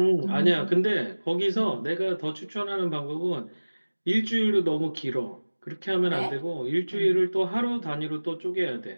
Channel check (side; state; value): both; inverted; correlation -1.00